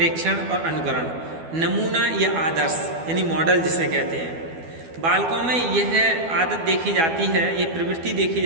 और अनुकरण। नमूना या आदर्श यानी मॉडल जिसे कहते हैं, बालकों में यह आदत देखी जाती है, ये प्रवृत्ति देखी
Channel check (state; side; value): late; left; 12 ms